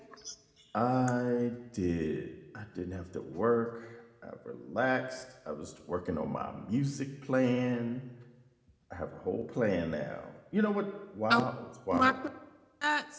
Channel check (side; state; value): both; identical; correlation 1.00